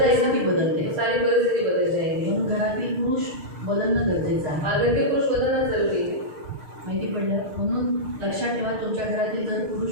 जाएगा, बदलते. सारी परिस्थिति बदल जाएगी. म्हणून घरातील पुरुष बदलणं गरजेचं आहे. और घर के पुरुष बदलना जरूरी है. माहिती पडलं. म्हणून लक्षात ठेवा तुमच्या घरातील जर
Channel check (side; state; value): left; late; 6.6 ms